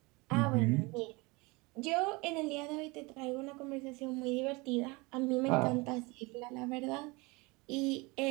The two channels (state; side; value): quieter; left; 25.7 dB